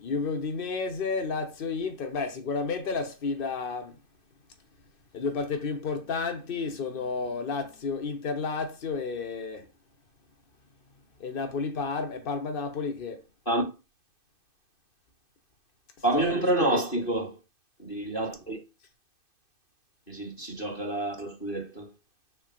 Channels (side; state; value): right; late; 2.6 ms